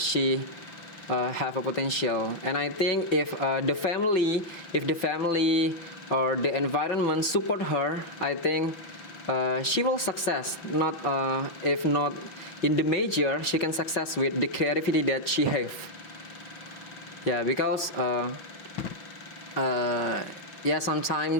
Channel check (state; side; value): late; right; 5.9 ms